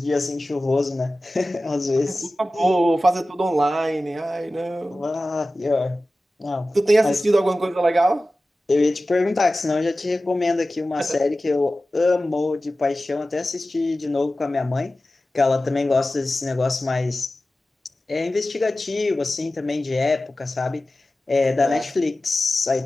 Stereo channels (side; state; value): both; normal; correlation 0.95